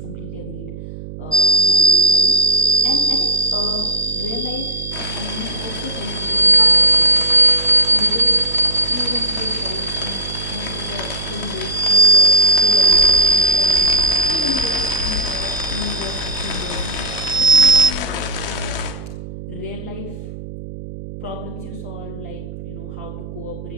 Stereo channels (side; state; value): right; noise; hum, 12 dB below the sound